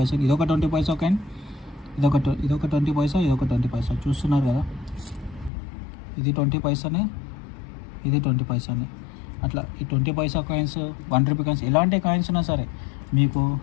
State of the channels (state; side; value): drops out; right; at 5.5 s